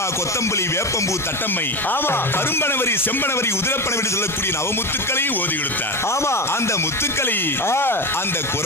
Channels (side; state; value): both; normal; correlation 0.20